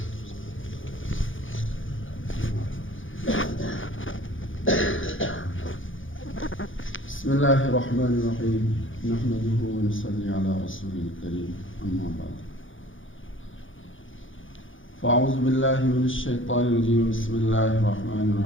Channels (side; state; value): right; late; 0.57 ms